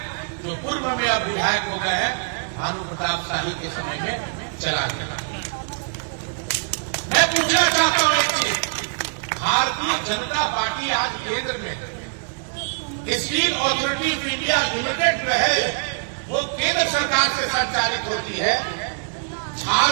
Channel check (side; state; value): left; silent; digital silence